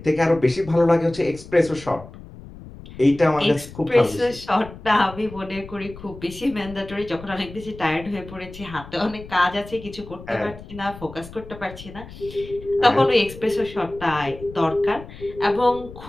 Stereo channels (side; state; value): left; noise; rumble, 16 dB below the sound